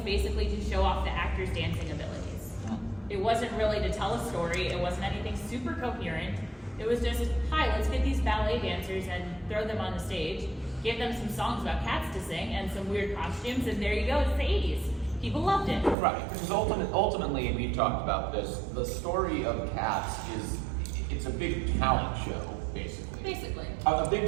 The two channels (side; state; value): left; drops out; at 16.0 s